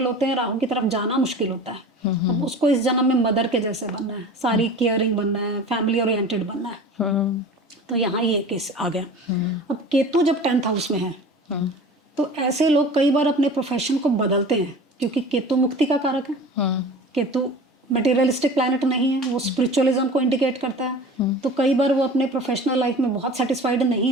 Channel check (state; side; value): normal; both; correlation 0.38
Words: होते हैं, राहु की तरफ जाना मुश्किल होता है। अब उसको इस जन्म में मदर के जैसे बनना है, सारी केयरिंग बनना है, फैमिली ओरिएंटेड बनना है। तो यहाँ ये केस आ गया। अब केतु जब 10th हाउस में है, तो ऐसे लोग कई बार अपने प्रोफेशन को बदलते हैं, क्योंकि केतु मुक्ति का कारक है। केतु मटेरियलिस्टिक प्लैनेट नहीं है, वो स्पिरिचुअलिज्म को इंडिकेट करता है। तो कई बार वो अपने प्रोफेशनल लाइफ में बहुत सेटिस्फाइड नहीं